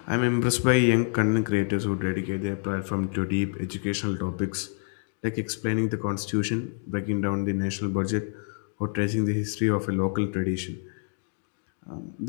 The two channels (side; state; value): right; silent; digital silence